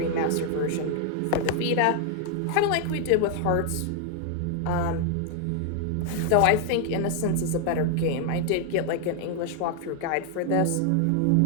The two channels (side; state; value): both; different; correlation 0.00